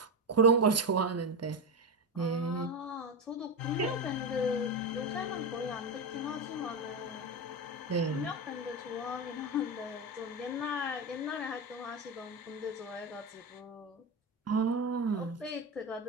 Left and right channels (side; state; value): both; normal; correlation 0.15